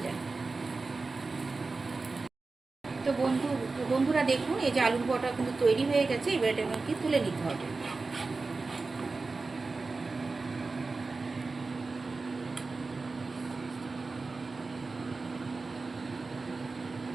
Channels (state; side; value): quieter; left; 3.9 dB